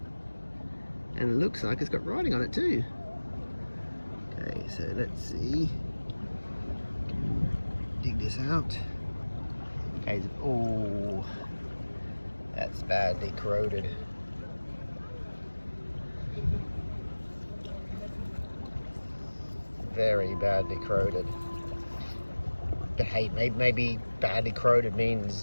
And it looks like it's got writing on it too. Okay, so let's see. Dig this out. Okay, oh, that's badly corroded. Very badly corroded. But hey, maybe badly corroded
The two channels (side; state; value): both; inverted; correlation -1.00